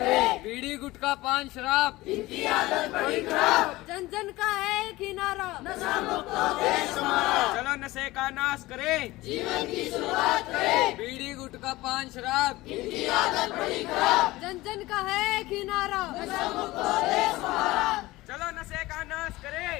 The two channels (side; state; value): right; quieter; 19.0 dB